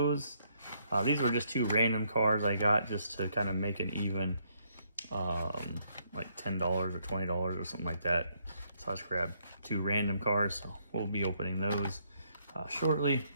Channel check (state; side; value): inverted; both; correlation -0.72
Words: These were just 2 random cars I got just to kind of make an even, like $10 or $20 or something like that. So I just grabbed 2 random cars. So we'll be opening those shortly.